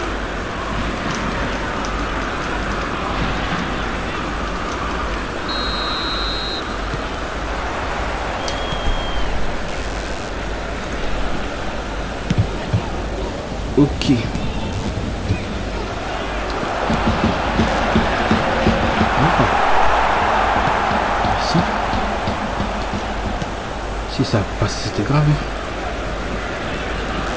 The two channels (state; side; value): identical; both; correlation 1.00